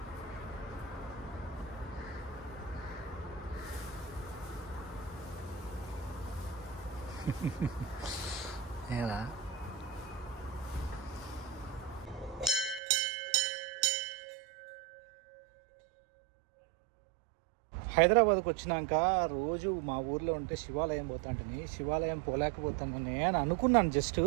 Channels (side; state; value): left; drops out; at 12.8 s